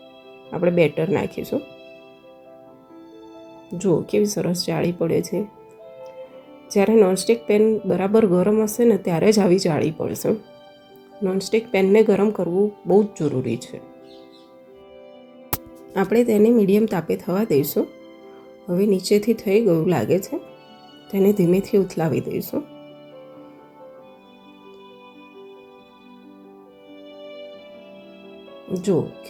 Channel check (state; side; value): identical; both; correlation 1.00